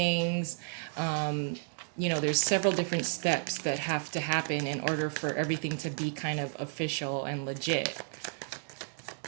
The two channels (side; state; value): left; silent; digital silence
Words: There's several different steps that have to happen in order for everything to be kind of official and legit.